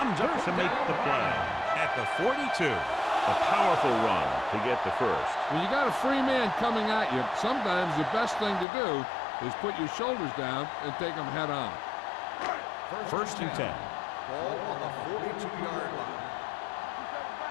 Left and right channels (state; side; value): drops out; right; at 8.7 s